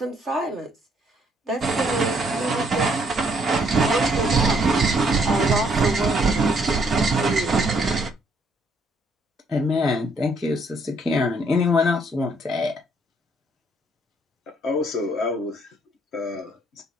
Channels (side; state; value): both; normal; correlation 0.68